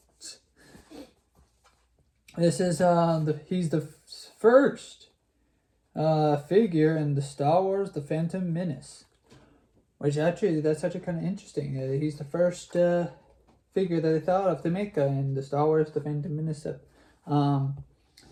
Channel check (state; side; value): identical; both; correlation 1.00